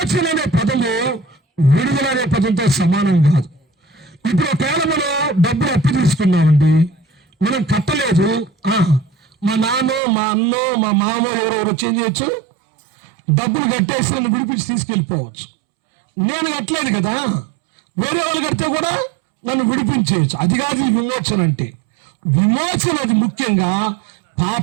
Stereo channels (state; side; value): drops out; left; at 10.0 s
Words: అనే పదము విడుదల అనే పదంతో సమానం కాదు. ఇప్పుడు ఒకవేళ మనం డబ్బులు అప్పు తీసుకున్నామండి, మనం కట్టలేదు, మా నాన్న, మా అన్న, మా మామ ఎవరెవరు చేంజ్ చేయొచ్చు, డబ్బులు కట్టేసి నన్ను విడిపించి తీసుకెళ్ళిపోవచ్చు. నేను కట్టలేదు కదా, వేరే వాళ్ళు కడితే కూడా నన్ను విడిపించేయచ్చు. అది కాదు విమోచన అంటే. విమోచన అది ముఖ్యంగా